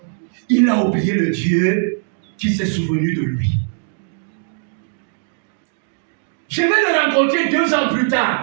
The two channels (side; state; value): left; silent; digital silence